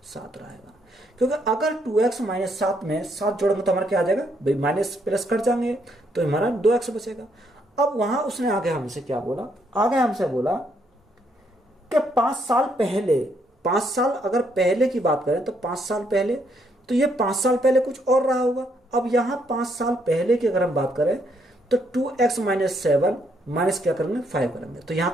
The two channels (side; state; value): both; normal; correlation 0.73